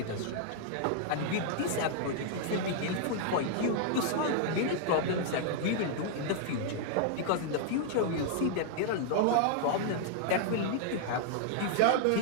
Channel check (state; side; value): different; both; correlation -0.01